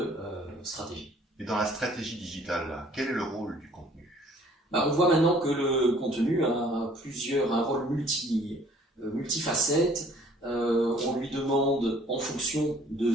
stratégie. Et dans la stratégie digitale, quel est le rôle du contenu ? On voit maintenant que le contenu a un rôle multifacette. On lui demande, en fonction de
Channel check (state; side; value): normal; both; correlation 0.56